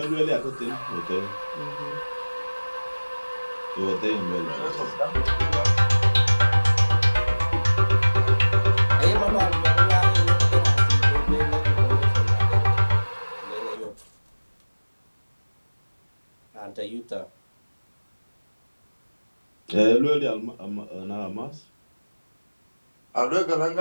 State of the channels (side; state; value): both; inverted; correlation -1.00